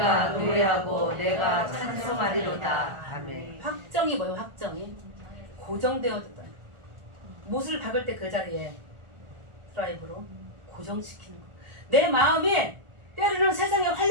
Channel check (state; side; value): late; left; 1.4 ms